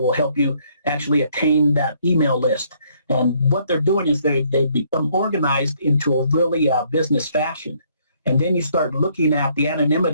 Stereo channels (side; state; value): both; inverted; correlation -0.67